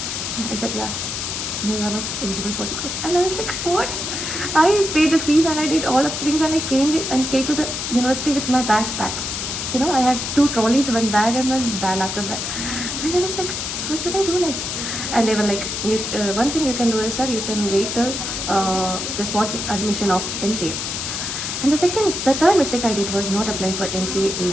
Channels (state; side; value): noise; left; hiss, 4 dB below the sound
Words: I said, "Yeah." "No, you are not eligible for the course." And I was like, "What?" I paid the fees and I did all of the things, and I came to the university with my bags packed. I had 2 trolleys, one bag and one bag after that, and I was like, "What should I do next?" And they were like, "One thing you can do is that you can wait till the spot admission of MCA." And the third mistake I did was not applying for MCA in